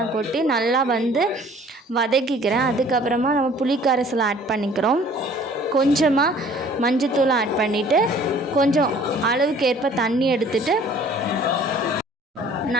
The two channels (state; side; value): normal; both; correlation 0.52